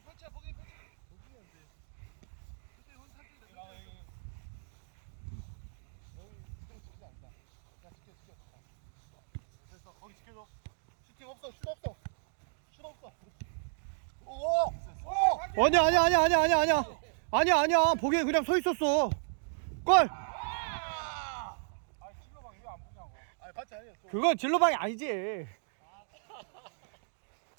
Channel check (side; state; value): left; silent; digital silence